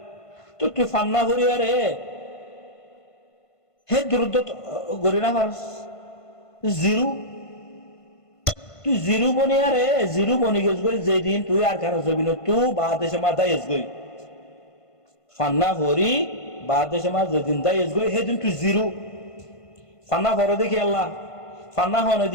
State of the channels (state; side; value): late; right; 1.5 ms